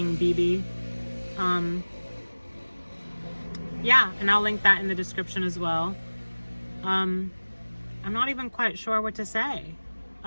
BB. Yeah, and I'll link that in the description as well. I'm not even quite sure what to say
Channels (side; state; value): both; inverted; correlation -1.00